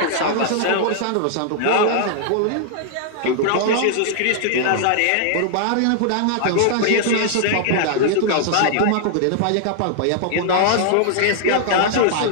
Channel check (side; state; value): both; different; correlation -0.01